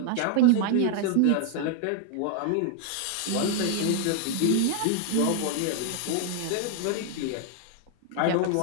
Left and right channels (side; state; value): both; different; correlation 0.00